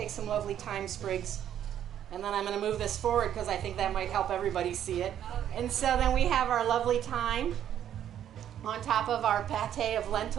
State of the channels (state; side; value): quieter; left; 10.4 dB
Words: some lovely thyme sprigs, and then I'm going to move this forward because I think that might help everybody see it. And so then we have our lovely thyme on top of our pate of